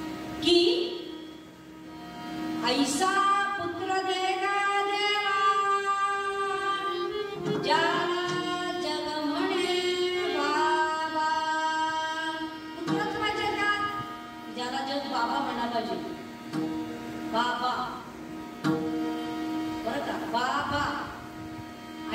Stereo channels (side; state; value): both; identical; correlation 1.00